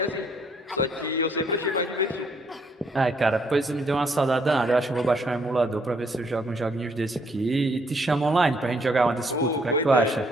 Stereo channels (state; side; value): normal; both; correlation 0.68